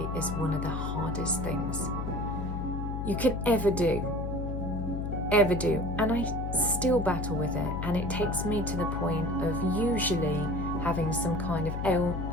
is one of the hardest things you can ever do. And I still battle with it, and it takes me to the point of usually having some kind of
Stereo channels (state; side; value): noise; left; hum, 3 dB below the sound